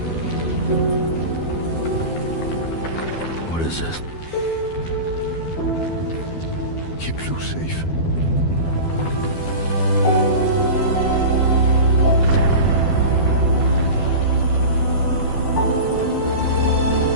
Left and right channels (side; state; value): right; late; 12 ms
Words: What is this? Keep Lou safe.